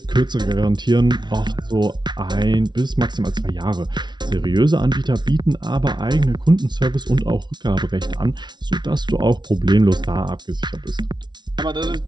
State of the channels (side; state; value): left; late; 0.21 ms